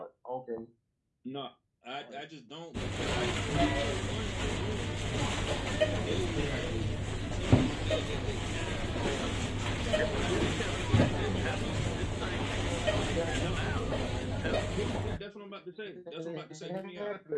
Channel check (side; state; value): both; identical; correlation 1.00